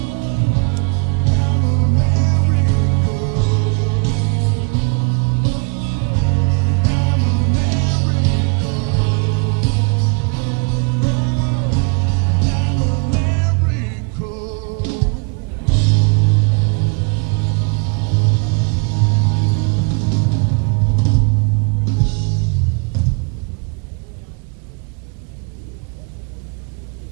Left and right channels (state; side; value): quieter; left; 33.0 dB